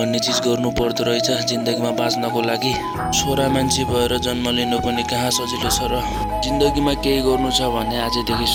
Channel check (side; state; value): both; identical; correlation 1.00